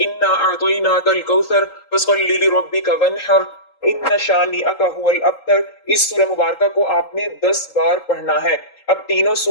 اعطیناک الکوثر فصل لربک وانحر ان شانئک هو الابتر۔ اس سورہ مبارکہ کو آپ نے 10 بار پڑھنا ہے۔ اب تینوں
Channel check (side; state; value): right; late; 3.8 ms